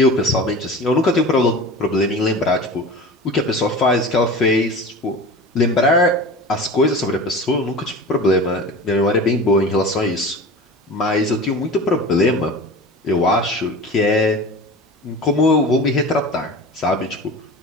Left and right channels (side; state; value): both; normal; correlation 0.35